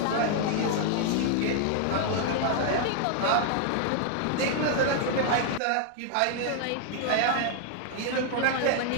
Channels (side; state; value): both; different; correlation 0.00